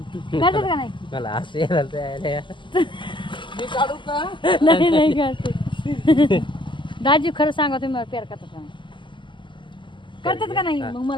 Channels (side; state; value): right; late; 0.24 ms